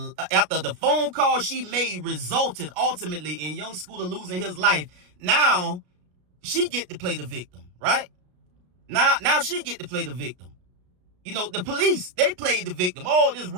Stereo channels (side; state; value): left; late; 33 ms